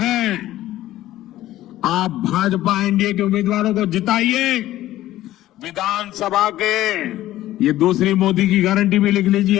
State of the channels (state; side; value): quieter; right; 14.6 dB